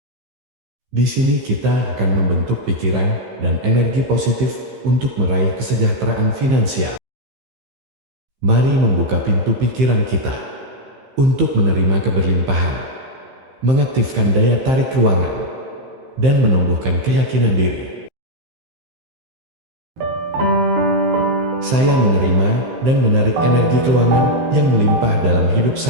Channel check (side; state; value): left; late; 15 ms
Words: Di sini kita akan membentuk pikiran dan energi positif untuk meraih kesejahteraan finansial. Mari membuka pintu pikiran kita untuk menerima keberlimpahan, mengaktifkan daya tarik ruangan, dan menumbuhkan keyakinan diri. Saya menerima dan menarik energi keuangan yang melimpah dalam hidup